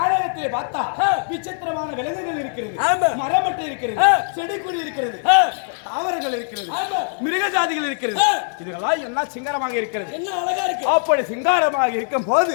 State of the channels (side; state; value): right; silent; 59 dB below the other